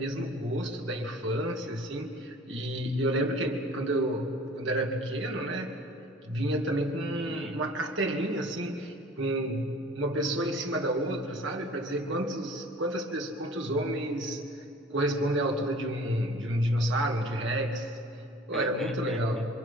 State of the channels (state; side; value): normal; both; correlation 0.48